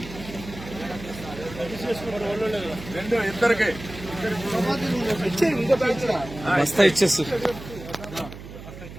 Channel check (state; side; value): noise; right; hum, 14 dB below the sound